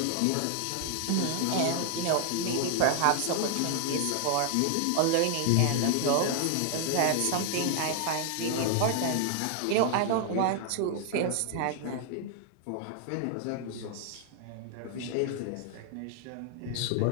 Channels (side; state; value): both; different; correlation 0.00